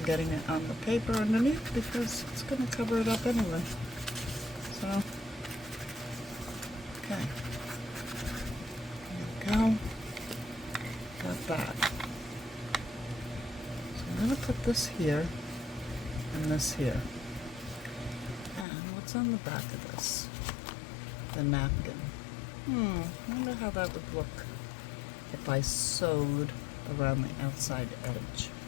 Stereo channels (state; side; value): drops out; right; at 18.7 s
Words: getting it on the paper underneath because it's going to cover it up anyway. So, okay. There we go. Got that. So I'm going gonna put this here and this here. And what's on the back of this? The napkin. I wonder how that would look if I sewed around the outside edge.